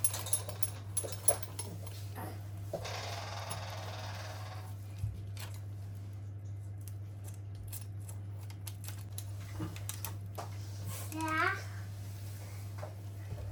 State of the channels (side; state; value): both; identical; correlation 1.00